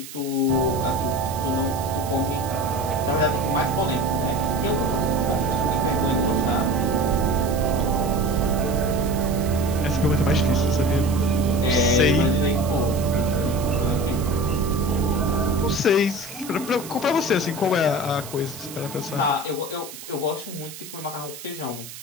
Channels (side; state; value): right; noise; hiss, 14 dB below the sound